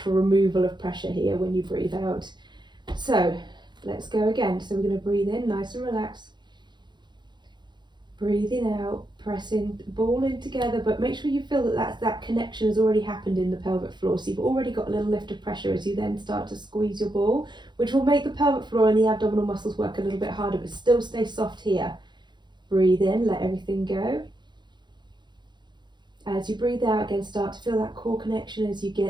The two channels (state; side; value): late; left; 0.21 ms